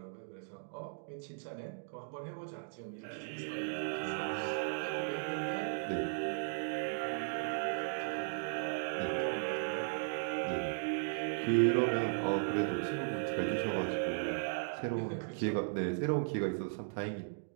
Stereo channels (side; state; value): left; silent; digital silence